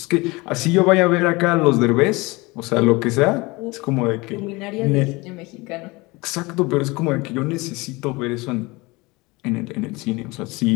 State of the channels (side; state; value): right; quieter; 23.9 dB